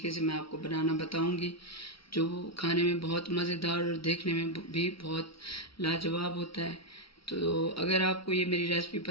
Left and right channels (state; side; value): late; right; 0.75 ms